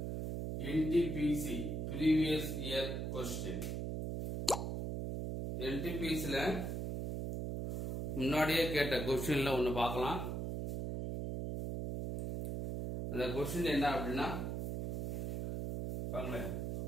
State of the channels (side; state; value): right; noise; hum, 2 dB below the sound